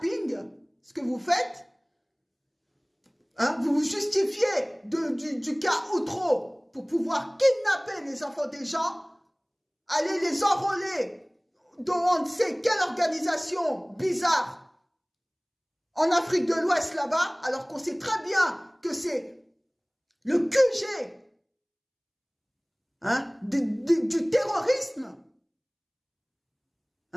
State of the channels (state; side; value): identical; both; correlation 1.00